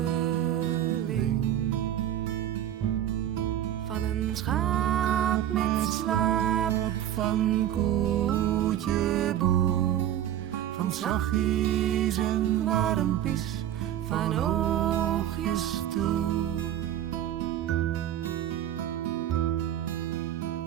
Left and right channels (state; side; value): quieter; left; 11.4 dB